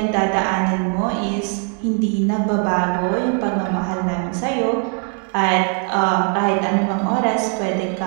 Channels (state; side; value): quieter; left; 39.0 dB